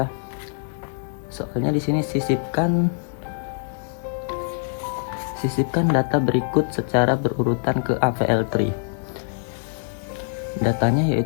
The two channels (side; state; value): right; silent; digital silence